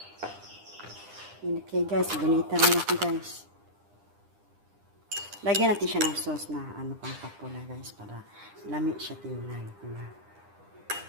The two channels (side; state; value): left; late; 9.9 ms